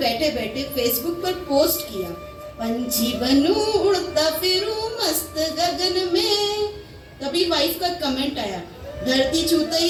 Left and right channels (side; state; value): both; identical; correlation 1.00